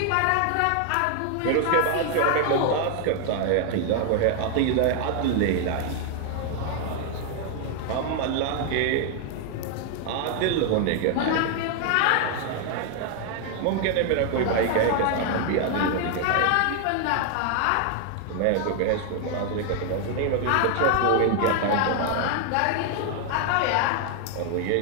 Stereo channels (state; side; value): different; both; correlation 0.00